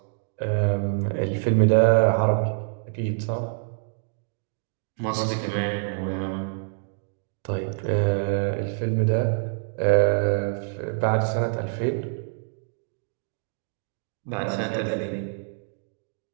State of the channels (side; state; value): left; silent; 61 dB below the other